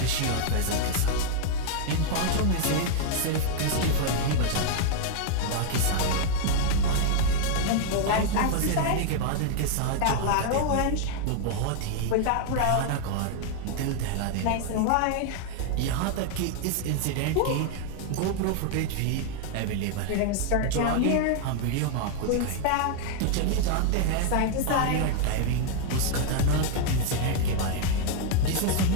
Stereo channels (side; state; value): both; different; correlation 0.00